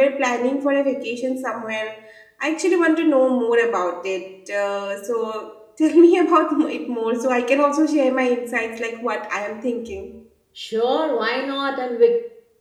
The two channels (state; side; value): identical; both; correlation 1.00